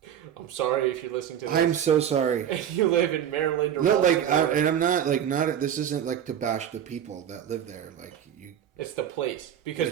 I'm sorry if you're listening to this. I'm so sorry. And you live in Maryland or no, Baltimore. and I'm not not. This isn't like to bash the people that live there. Like you, it's the place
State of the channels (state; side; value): quieter; left; 9.6 dB